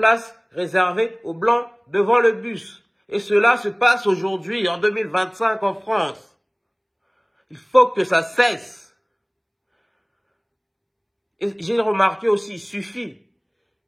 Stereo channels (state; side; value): identical; both; correlation 1.00